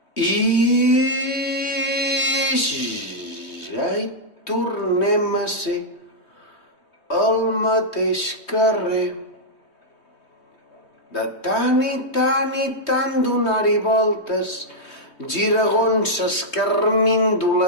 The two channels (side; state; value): right; late; 3.2 ms